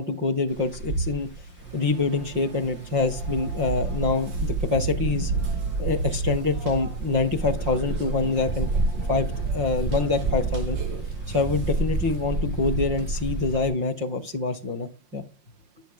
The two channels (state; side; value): late; left; 5.6 ms